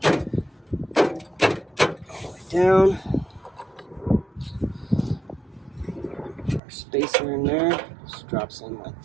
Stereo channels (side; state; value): left; drops out; at 6.6 s